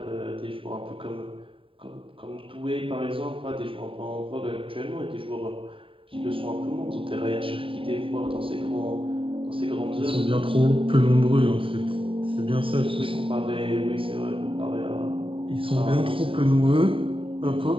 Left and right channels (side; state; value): left; late; 0.26 ms